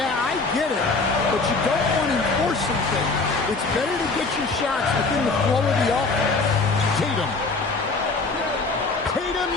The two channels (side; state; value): right; quieter; 3.8 dB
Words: I get it, but you don't want to enforce something. It's better to get your shots within the flow of the offense. Tatum. Tatum